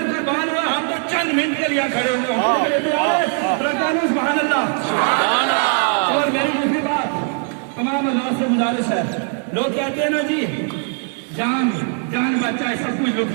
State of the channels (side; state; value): left; quieter; 37.7 dB